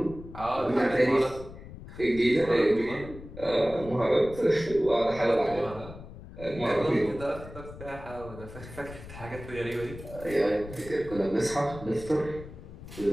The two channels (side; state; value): left; noise; rumble, 14 dB below the sound